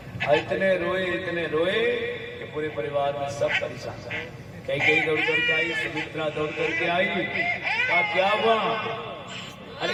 इतने रोए कि पूरे परिवार में सब परेशान। कई दौड़ करके आई, सुमित्रा दौड़ करके आई, कहा क्या हुआ, अरे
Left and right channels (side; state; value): both; identical; correlation 1.00